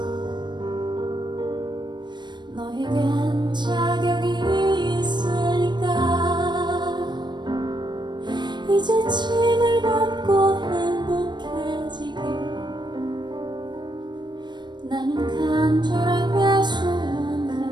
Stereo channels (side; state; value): left; late; 0.22 ms